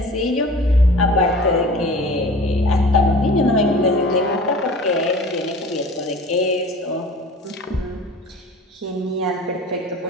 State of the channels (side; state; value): both; normal; correlation 0.42